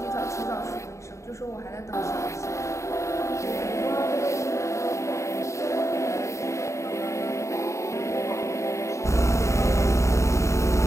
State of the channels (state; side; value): late; right; 0.14 ms